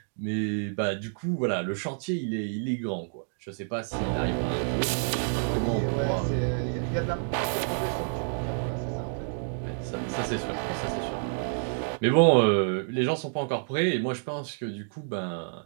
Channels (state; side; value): silent; left; digital silence